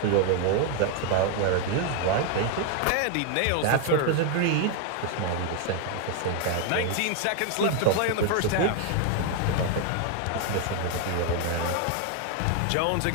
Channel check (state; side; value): different; both; correlation 0.00